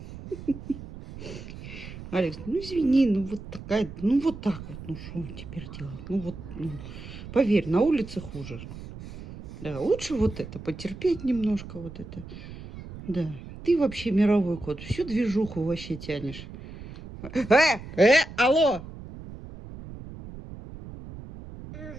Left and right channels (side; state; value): right; noise; rumble, 13 dB below the sound